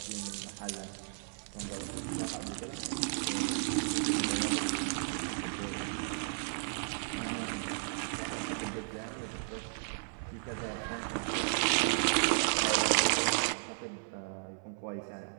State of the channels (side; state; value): left; silent; 55 dB below the other